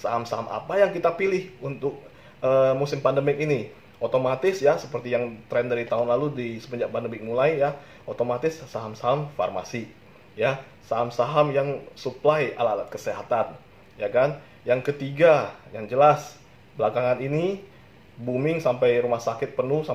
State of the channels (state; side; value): identical; both; correlation 1.00